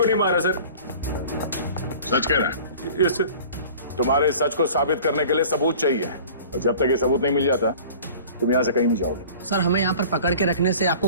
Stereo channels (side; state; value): both; inverted; correlation -0.44